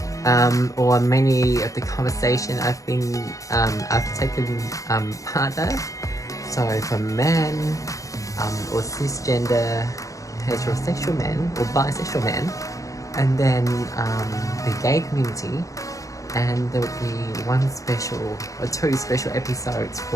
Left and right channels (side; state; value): right; late; 0.16 ms